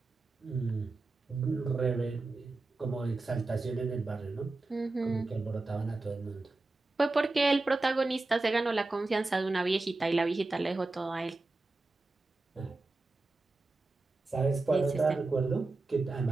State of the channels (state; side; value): quieter; left; 3.3 dB